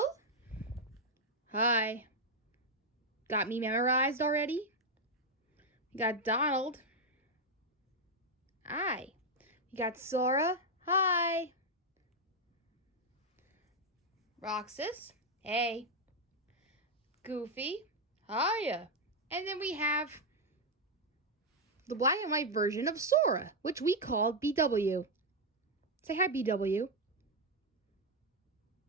Hi. Got me memorized already? We got Donald. Hi. We got Sora. Hi. Roxas. Hey. Goofy. Hiya. And then we have the black and white version of Sora, which we call BW. Say hi, BW.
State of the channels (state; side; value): normal; both; correlation 0.02